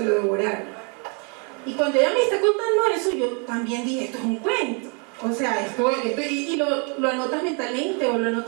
lo devoraron. Y cuando ella me está contando eso, yo también dije, esto es un cuento. O sea, y lo anotas mentalmente o lo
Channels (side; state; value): left; quieter; 36.3 dB